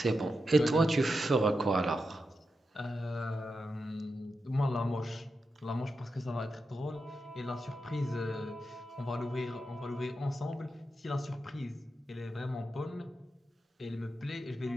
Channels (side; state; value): both; normal; correlation 0.88